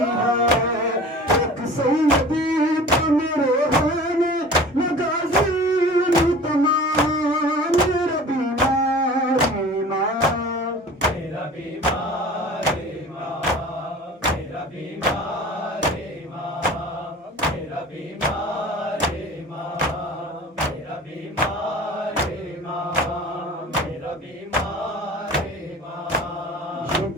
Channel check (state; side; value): normal; both; correlation 0.41